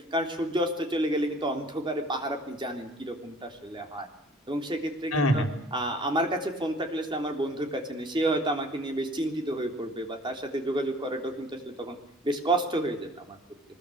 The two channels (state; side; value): normal; both; correlation 0.51